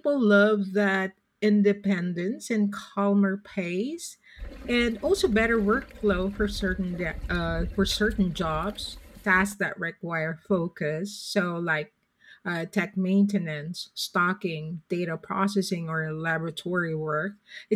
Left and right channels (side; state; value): both; identical; correlation 1.00